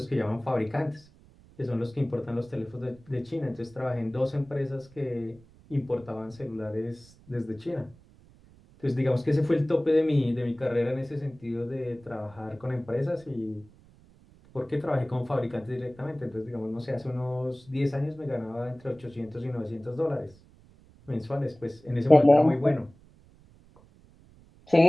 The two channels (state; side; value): noise; right; rumble, 26 dB below the sound